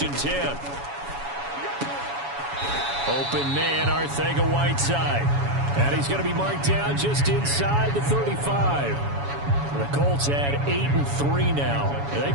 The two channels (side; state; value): left; late; 7.1 ms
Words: and 10. Open man, ElijxhDaGoat's. And he's going to be marked down just inside the 35. The Colts had 8-3 now. And they